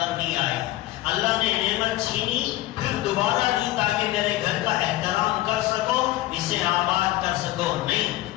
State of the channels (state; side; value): quieter; right; 16.5 dB